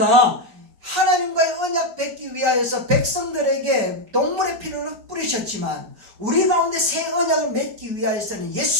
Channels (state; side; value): late; left; 5.2 ms